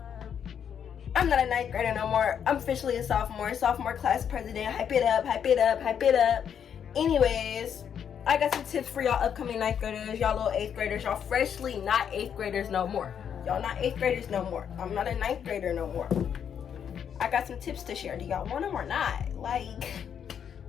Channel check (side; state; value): right; quieter; 8.2 dB